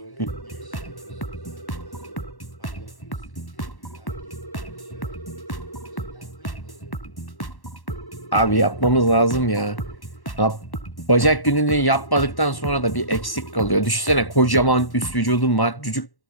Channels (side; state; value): right; late; 1.1 ms